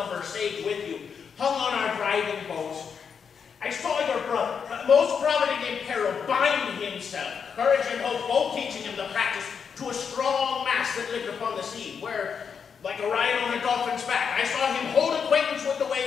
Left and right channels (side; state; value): right; quieter; 6.6 dB